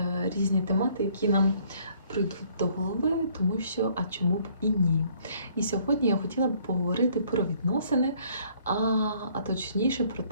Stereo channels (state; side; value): inverted; both; correlation -0.61